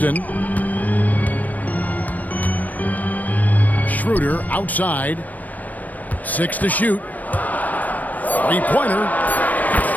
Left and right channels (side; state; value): right; late; 0.079 ms